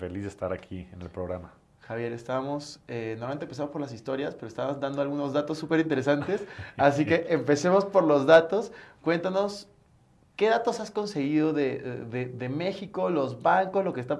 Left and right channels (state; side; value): identical; both; correlation 1.00